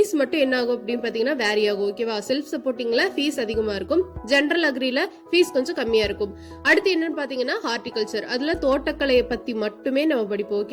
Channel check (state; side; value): identical; both; correlation 1.00